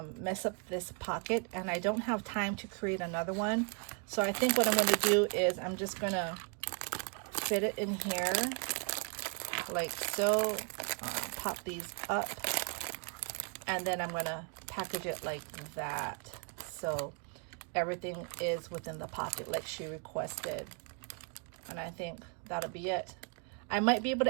mess up this pocket, and I don't have time to create another one. So I think what I'm gonna do is I'm just gonna fit it in here like so, pop these up, and then I'm gonna package it like that, so everything is within the pocket like she requested. And I think that'll be it. I might be able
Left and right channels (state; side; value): quieter; left; 38.4 dB